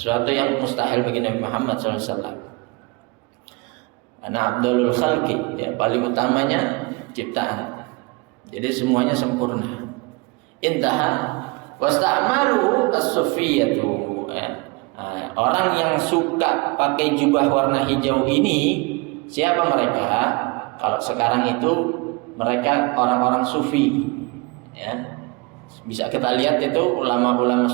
yang mustahil bagi Nabi Muhammad SAW. Karena Abdulul Khalqi, ya, paling utamanya ciptaan, jadi semuanya sempurna. Intaha. Wasta'malu as-sufiyatu. Orang yang suka pakai jubah warna hijau ini, siapa mereka? Kalau sekarang itu mereka orang-orang sufi. Ya. Bisa kita lihat itu ulama-ulama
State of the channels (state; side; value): quieter; left; 26.4 dB